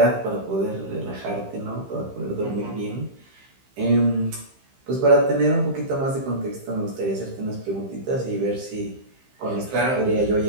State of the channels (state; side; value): late; left; 15 ms